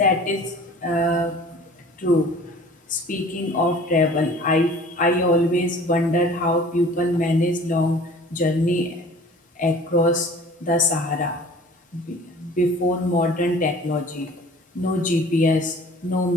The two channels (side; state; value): both; normal; correlation 0.47